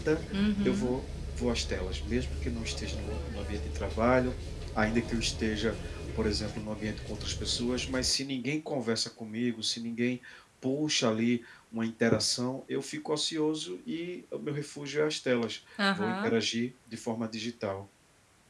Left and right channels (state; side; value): identical; both; correlation 1.00